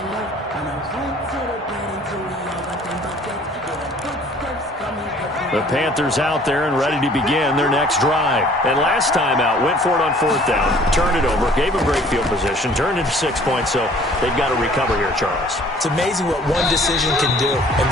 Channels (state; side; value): normal; both; correlation 0.54